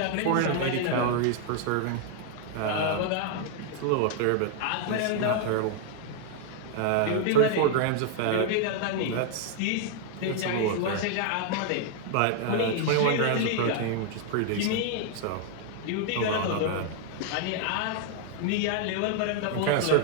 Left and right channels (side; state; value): both; different; correlation 0.00